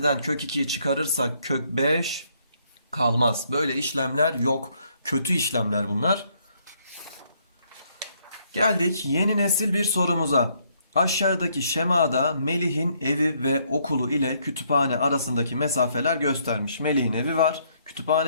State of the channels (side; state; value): both; inverted; correlation -0.70